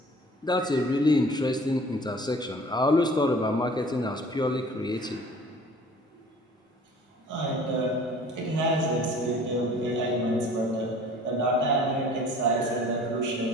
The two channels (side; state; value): both; normal; correlation 0.48